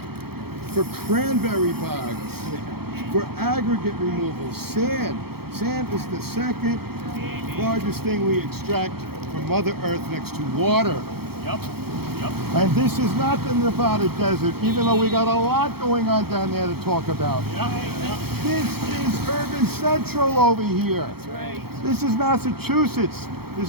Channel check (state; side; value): late; left; 0.96 ms